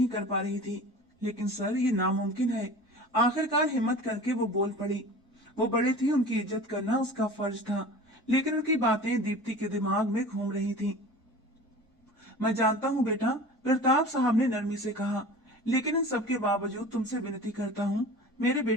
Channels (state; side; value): normal; both; correlation 0.38